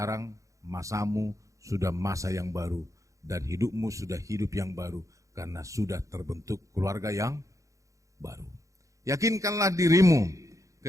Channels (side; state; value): left; late; 0.15 ms